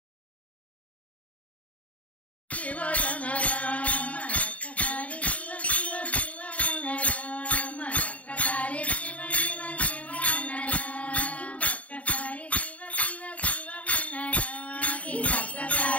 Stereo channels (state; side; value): late; right; 0.067 ms